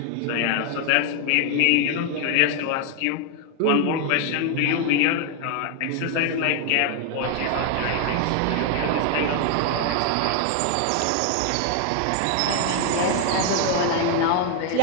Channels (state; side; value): different; both; correlation 0.00